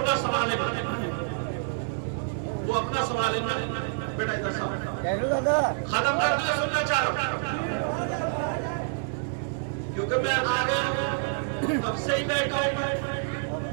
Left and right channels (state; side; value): silent; left; digital silence